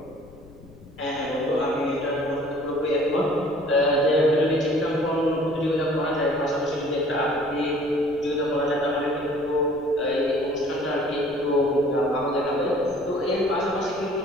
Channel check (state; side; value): noise; left; rumble, 22 dB below the sound